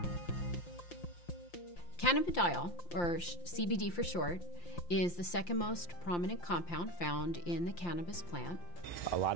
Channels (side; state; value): right; late; 5.8 ms